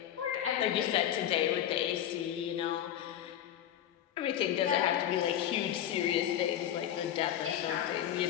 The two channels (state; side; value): quieter; right; 11.0 dB